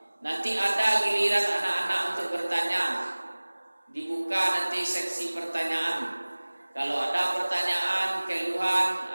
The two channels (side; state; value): both; inverted; correlation -1.00